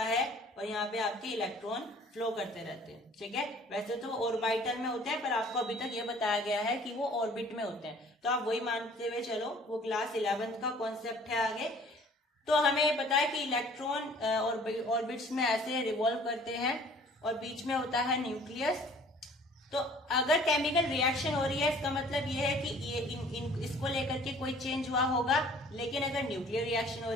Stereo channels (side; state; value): both; normal; correlation 0.53